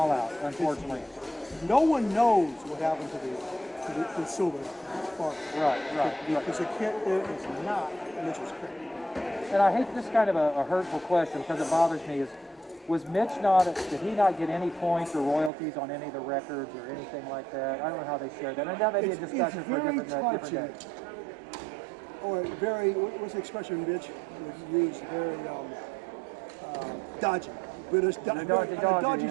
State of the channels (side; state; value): left; drops out; at 15.5 s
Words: out, unfortunately. No one knows what happened to the Silver Sparkle. Right. Because the kit there is not Mitchell's kit. And I hate this kind of a hurtful question because it bothers me. Did he not get any points or royalties on any of the records or anything like that? I don't know how they share that. And that may be a discussion for a different day. Or what's the expression Mitch would use? Very dodgy. British dodgy